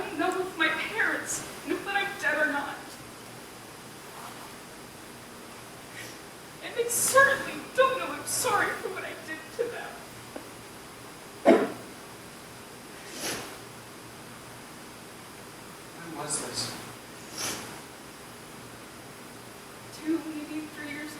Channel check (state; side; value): identical; both; correlation 1.00